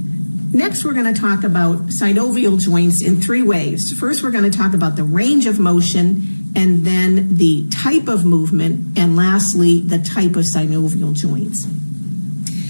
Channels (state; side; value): inverted; both; correlation -1.00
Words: Next, we're going to talk about synovial joints in three ways. First, we're going to talk about the range of motion, and then the type of movement, and lastly, the type of synovial joints.